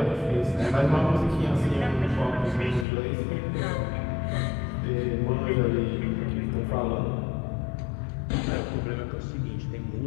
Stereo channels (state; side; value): drops out; right; at 2.9 s